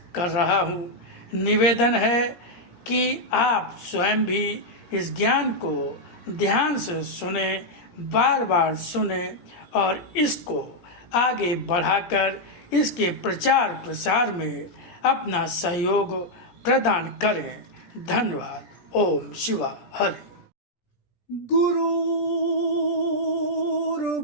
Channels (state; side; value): late; right; 17 ms